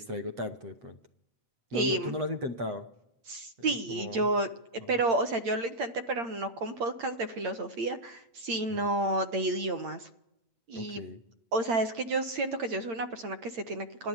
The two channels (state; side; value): late; left; 8.7 ms